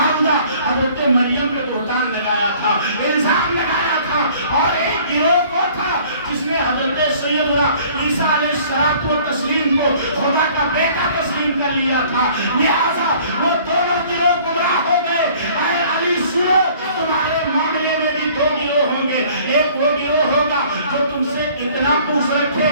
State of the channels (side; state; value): both; inverted; correlation -0.53